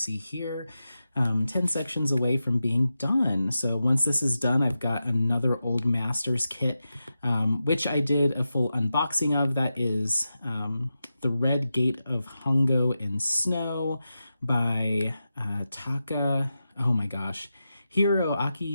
here, 10 sections away from being done. So once this is done, I've got another Old Masters kit, which I did a full unboxing of. That is The Red Gate of Hongo in Snow by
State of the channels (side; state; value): both; inverted; correlation -0.90